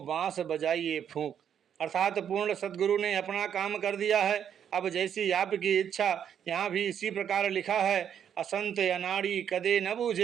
बांस बजाइए फूंक। अर्थात पूर्ण सतगुरु ने अपना काम कर दिया है। अब जैसी आपकी इच्छा। यहाँ भी इसी प्रकार लिखा है, असंत अनाड़ी कदे न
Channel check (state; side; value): quieter; left; 8.7 dB